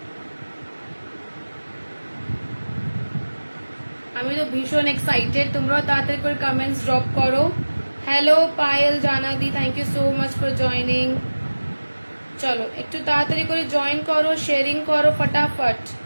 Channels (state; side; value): inverted; both; correlation -1.00